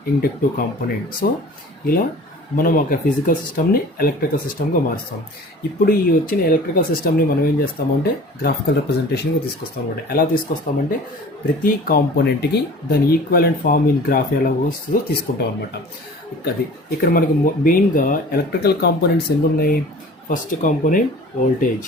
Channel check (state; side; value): normal; both; correlation 0.44